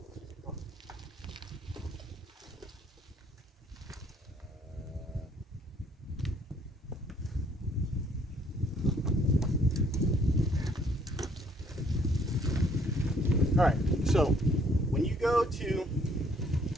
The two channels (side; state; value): both; normal; correlation 0.63